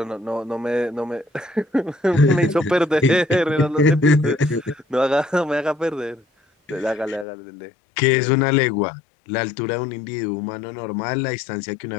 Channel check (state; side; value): drops out; right; at 7.2 s